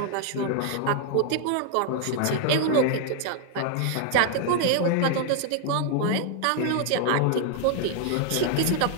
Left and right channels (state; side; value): different; both; correlation 0.00